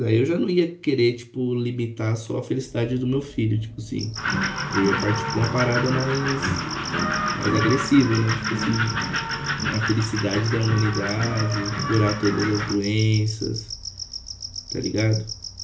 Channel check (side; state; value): both; identical; correlation 1.00